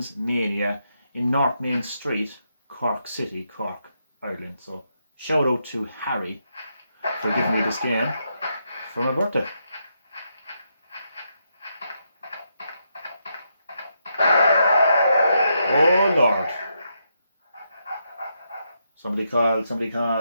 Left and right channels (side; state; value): both; inverted; correlation -0.81